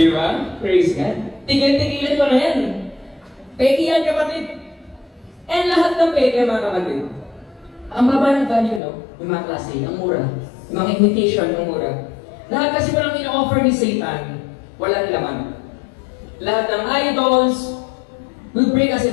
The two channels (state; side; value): drops out; right; at 8.8 s